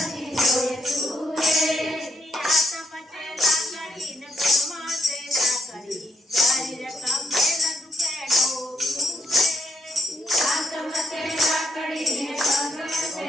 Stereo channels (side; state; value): both; normal; correlation 0.76